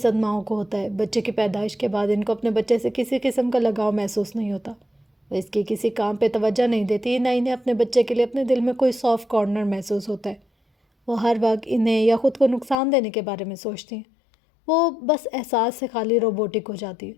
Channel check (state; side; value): drops out; right; at 12.8 s